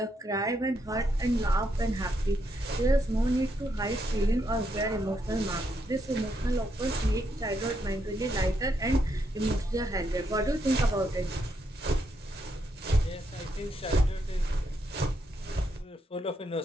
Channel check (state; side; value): normal; both; correlation 0.79